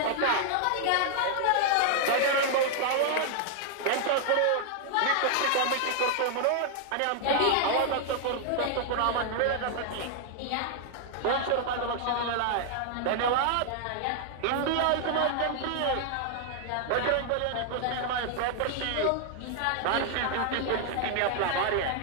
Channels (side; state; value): both; different; correlation 0.00